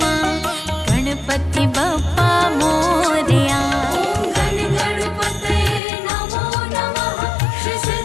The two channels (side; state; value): right; drops out; at 5.8 s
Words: गणपति बप्पा मोरया। ओम गण गणपतये